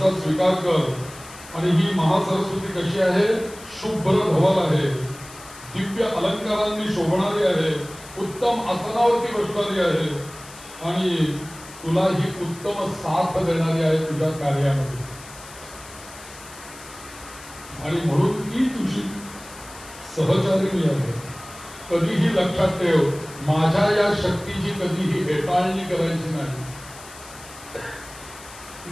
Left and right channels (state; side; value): noise; left; hiss, 18 dB below the sound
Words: स्वीकार कर. आणि ही महासरस्वती कशी आहे? शुभ्र धवल आहे, दिव्य अलंकारांनी शोभणारी आहे, उत्तम आसनावरती बसणारी आहे आणि तुला ही उत्तम साथ देणारी आहे तुझ्या कार्यामध्ये. आणि म्हणून ती तुझी सहचारिणी आहे. कधीही लक्षात ठेव, माझ्या या शक्तीची कधीही हेटाळणी करायची नाही.